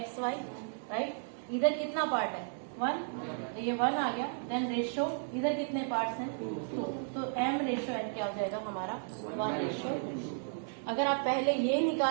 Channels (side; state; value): left; silent; digital silence